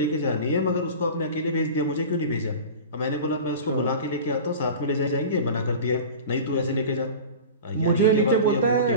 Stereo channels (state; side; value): inverted; both; correlation -0.34